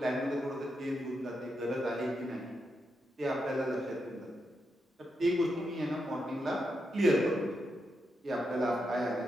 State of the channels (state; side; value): normal; both; correlation 0.84